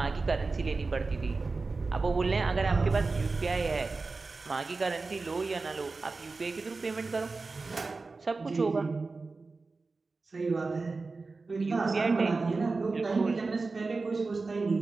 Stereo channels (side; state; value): left; quieter; 3.9 dB